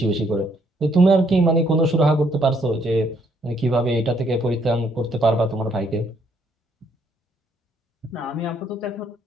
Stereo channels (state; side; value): normal; both; correlation 0.69